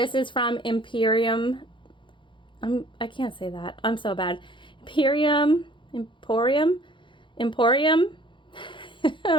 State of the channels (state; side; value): late; right; 0.24 ms